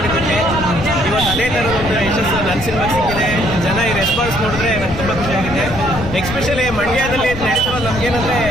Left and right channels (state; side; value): noise; left; rumble, 8 dB below the sound